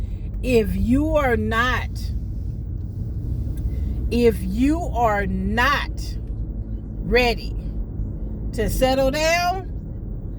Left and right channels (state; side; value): identical; both; correlation 1.00